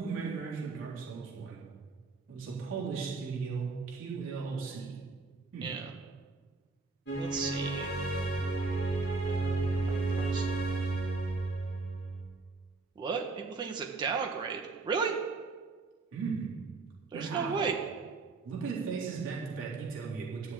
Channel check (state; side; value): quieter; left; 3.8 dB